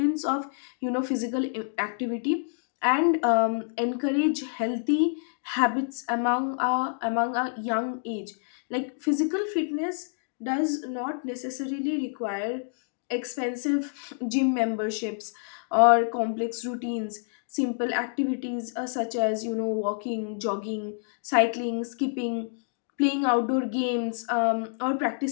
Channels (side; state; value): right; silent; digital silence